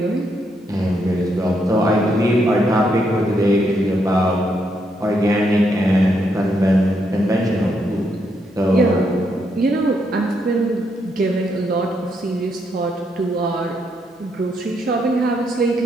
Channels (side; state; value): both; normal; correlation 0.77